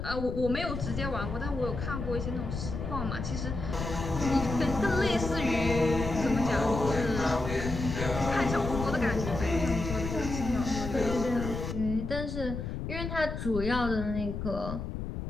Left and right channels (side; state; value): left; noise; rumble, 5 dB below the sound